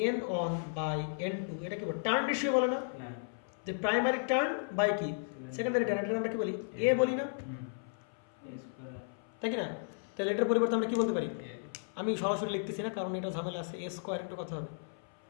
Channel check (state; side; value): silent; right; 55 dB below the other